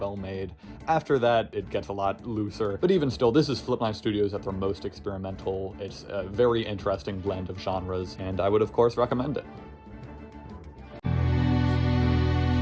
made. After that, it gets a lot looser, but even still, this is Flip9 Studios at their most experimental. It's a very interesting blend of genres, and I would of course recommend it.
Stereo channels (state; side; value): identical; both; correlation 1.00